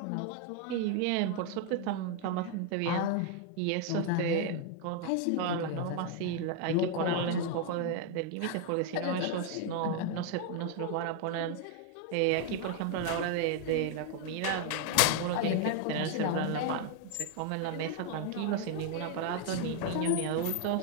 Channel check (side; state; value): both; different; correlation 0.00